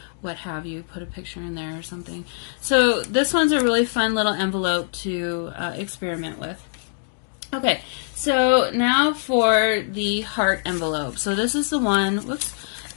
what have you, put a picture in there or something. So this one's a really fun little envelope to experiment with. Okay, so now for the heart envelope. So this is the one, whoops,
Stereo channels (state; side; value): silent; right; digital silence